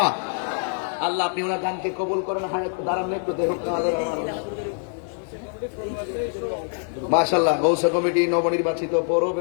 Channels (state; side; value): silent; right; 57 dB below the other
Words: আল্লাহ আপনি ওনার গানকে কবুল করেন। হায়াত দাঁড়ান একটু, দেখুন মাশাআল্লাহ। গৌসা কমিটি নবনির্বাচিত পৌর